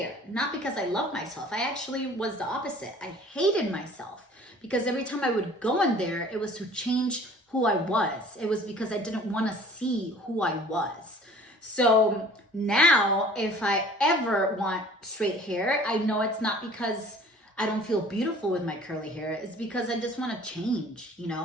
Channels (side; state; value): both; normal; correlation 0.49